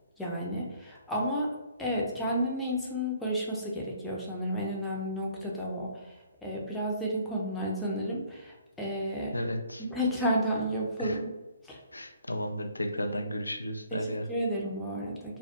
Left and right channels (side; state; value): both; inverted; correlation -0.57